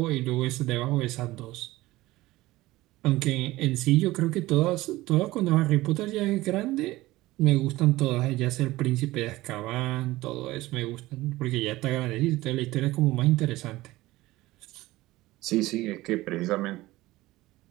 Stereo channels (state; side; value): quieter; left; 18.2 dB